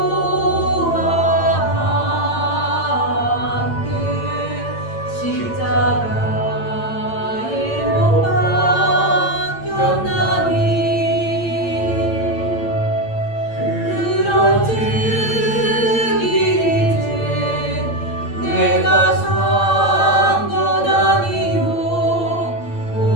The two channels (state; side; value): late; right; 8.8 ms